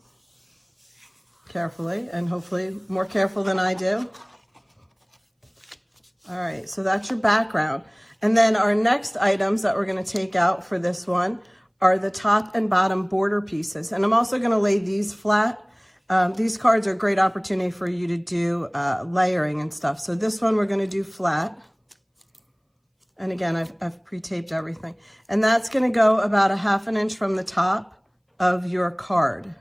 carefully, and hopefully more careful than I do. All right, so that's your background. And then our next items that we're gonna take out for this one are the top and bottom border pieces. And I'm also gonna lay these flat. These cards are a great opportunity for you to do layering and stuff. So this one we're gonna do flat. And again, I've pre-taped everything. And that's gonna go about 1/2 inch from the top of your card,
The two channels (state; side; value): identical; both; correlation 1.00